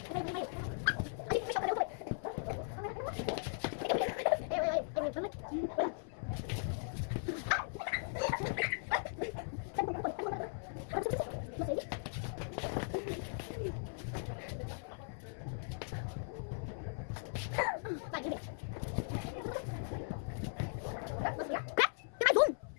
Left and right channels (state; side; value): silent; right; 52 dB below the other